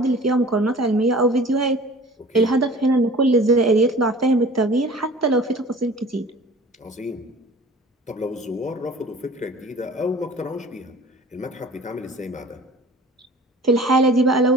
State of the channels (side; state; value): both; normal; correlation 0.44